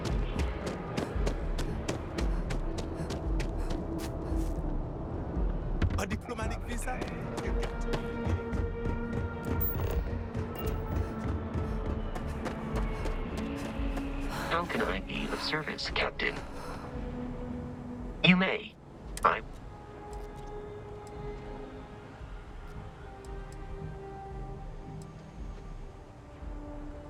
A diplomatic visa? How can I be of service, Captain? You may.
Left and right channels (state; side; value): identical; both; correlation 1.00